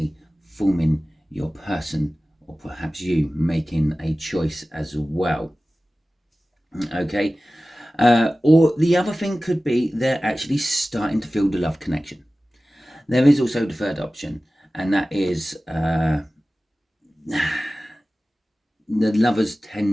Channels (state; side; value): normal; both; correlation 0.96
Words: forming your person, or perhaps you making a choice as well. Okay. Or the other thing could be they're actually starting to feel the love connection. There is also the third option, and that is the lovers